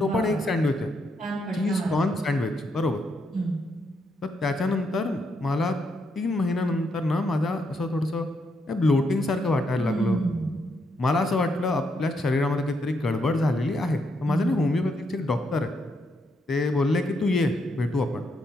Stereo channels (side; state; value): both; normal; correlation 0.78